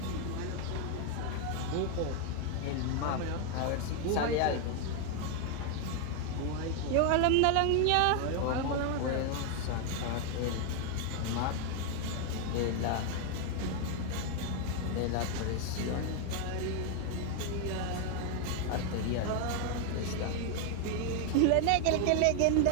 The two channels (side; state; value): both; different; correlation 0.01